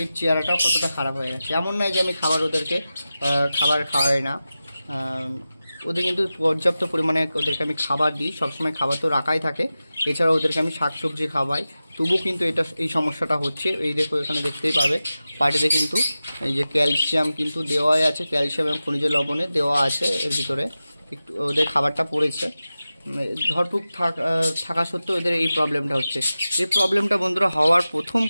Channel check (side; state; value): both; inverted; correlation -0.94